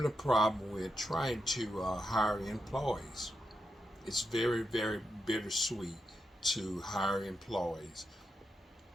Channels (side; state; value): both; normal; correlation 0.85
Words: a problem with trying to hire employees. It's very bittersweet to hire employees.